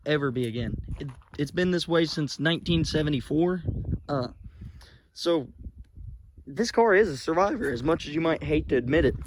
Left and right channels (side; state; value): both; identical; correlation 1.00